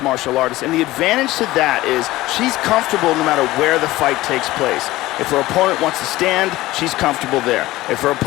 martial artist, and the advantage to that is she's comfortable no matter where the fight takes place. If her opponent wants to stand, she's comfortable there. If her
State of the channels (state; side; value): quieter; right; 17.6 dB